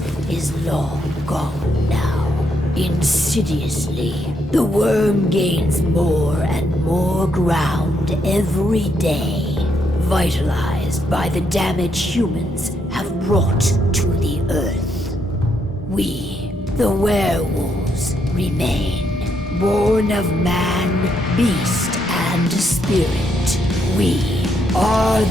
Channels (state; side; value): normal; both; correlation 0.77